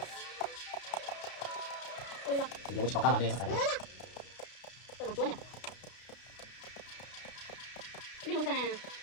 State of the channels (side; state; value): right; late; 32 ms